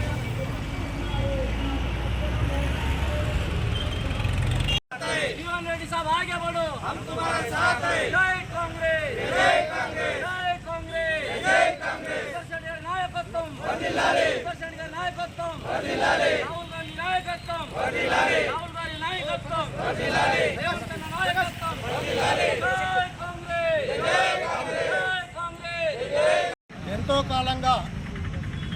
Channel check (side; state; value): both; identical; correlation 1.00